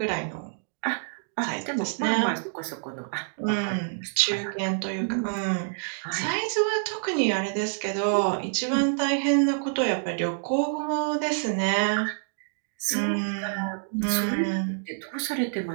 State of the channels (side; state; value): left; silent; digital silence